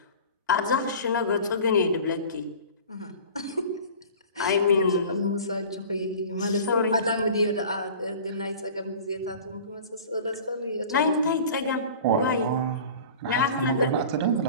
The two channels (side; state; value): both; inverted; correlation -0.40